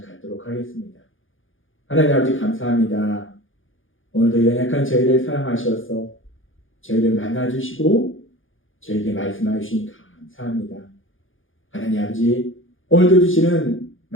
갖도록 하겠습니다. 하나님 아버지 감사합니다. 오늘도 연약한 저희를 사랑하셔서 저희를 만나주시고 저에게 말씀해 주시니 감사합니다. 하나님 아버지 오늘도 주시는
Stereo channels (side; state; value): right; late; 0.58 ms